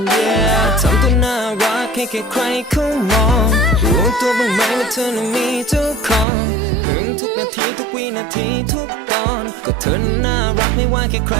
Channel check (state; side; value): drops out; left; at 6.2 s